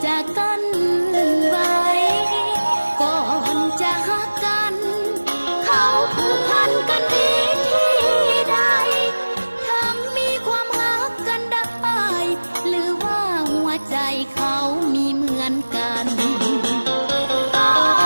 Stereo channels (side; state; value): both; inverted; correlation -1.00